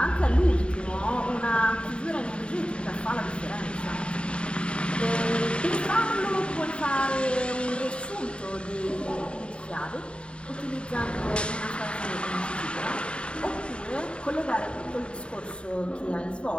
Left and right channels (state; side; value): late; right; 0.055 ms